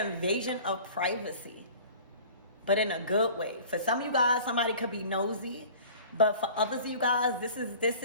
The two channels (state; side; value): inverted; both; correlation -0.44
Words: of privacy, but in a good way. For some of you guys, somebody could be nosy, but for others of you guys, this